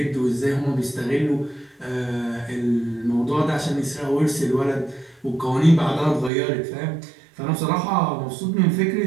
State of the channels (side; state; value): left; drops out; at 6.3 s